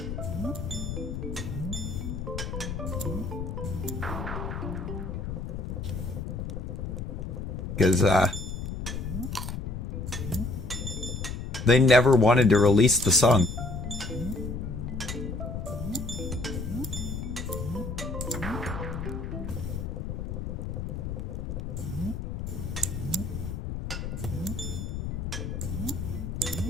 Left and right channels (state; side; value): noise; left; rumble, 5 dB below the sound